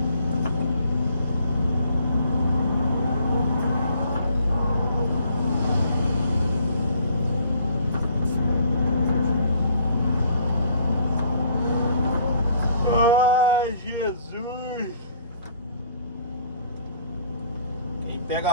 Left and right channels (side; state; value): both; inverted; correlation -0.60